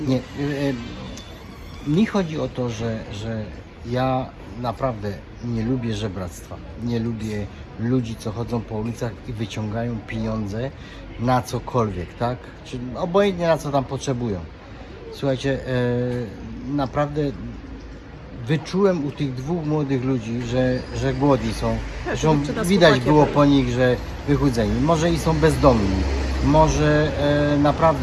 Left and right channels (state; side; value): identical; both; correlation 1.00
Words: Nie, mi chodzi o to, że ja naprawdę nie lubię żebractwa. Nie lubię ludzi, co chodzą po ulicach i wyciągają pieniądze na cokolwiek, tak? Czy obojętnie na co tam potrzebują. Słuchajcie, naprawdę wyczułem u tych dwóch młodych ludzi, że głodni są. Zresztą widać było po nich, że wychudzeni. Może i są bezdomni. Może